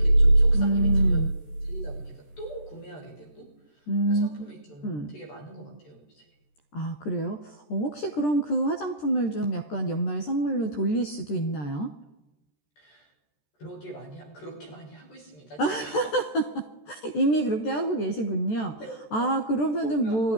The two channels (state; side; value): late; right; 14 ms